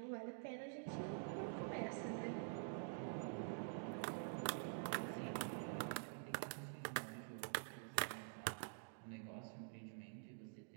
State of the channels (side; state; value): left; silent; digital silence